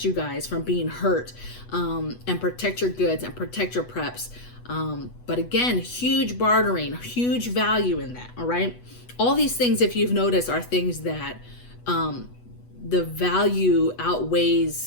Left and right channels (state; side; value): late; right; 8.2 ms